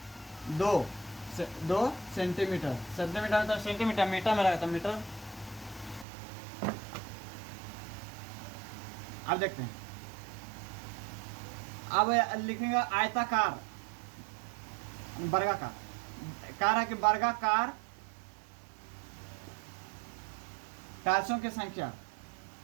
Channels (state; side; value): drops out; left; at 6.1 s